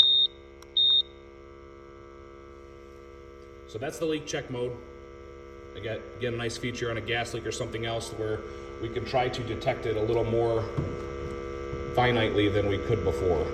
So that's the leak check mode. Again, a nice feature on a gas leak or something else where we can try to detect it a little more finitely than we could before.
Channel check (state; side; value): identical; both; correlation 1.00